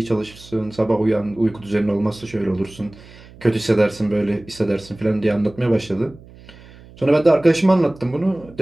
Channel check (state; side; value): noise; right; hum, 22 dB below the sound